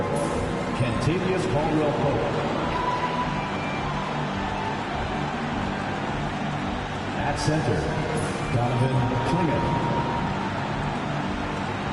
Kentavious Caldwell-Pope. At center, Donovan Clingan.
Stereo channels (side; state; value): both; identical; correlation 1.00